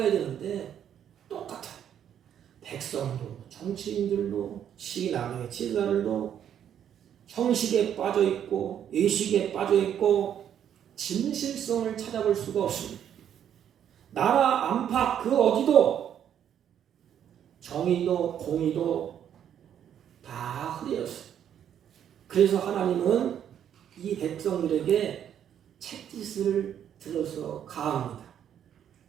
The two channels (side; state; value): left; quieter; 9.5 dB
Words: 되는데 똑같아요. 백성도 정치인들도 신앙의 지도자들도 형식에 빠져있고 의식에 빠져있고 진실성을 찾아볼 수가 없습니다. 나라 안팎 그 어디도 정의도 공의도 다 흐려졌어요. 그래서 하나님은 이 백성들에게 책짓을 들어서 가합니다.